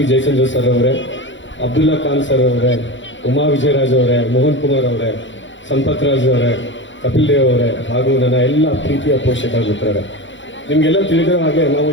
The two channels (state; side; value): late; right; 0.54 ms